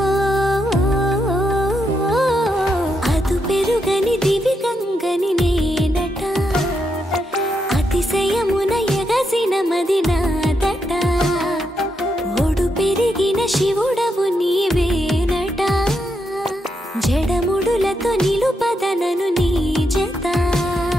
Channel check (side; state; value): both; normal; correlation 0.82